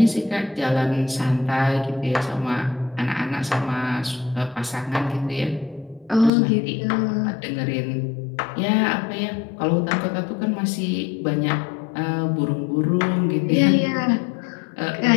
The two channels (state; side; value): drops out; right; at 6.3 s